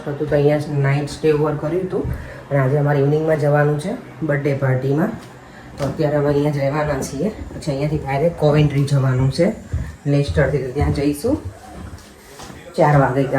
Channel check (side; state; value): both; identical; correlation 1.00